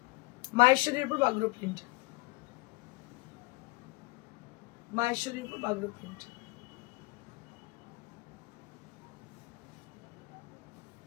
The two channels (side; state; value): right; quieter; 24.7 dB